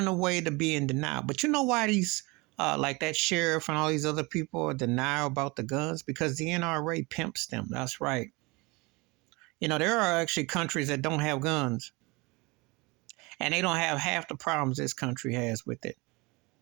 a way to be in denial. But you know why these like that sheriff and all these other people are denial about the guns? Because the NRA pimps them. That's right. You know, there are actually countries that don't have guns. And they don't have half the problems this country has with it.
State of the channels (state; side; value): quieter; left; 25.6 dB